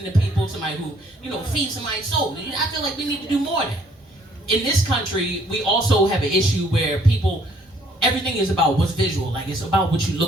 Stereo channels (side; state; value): both; normal; correlation 0.63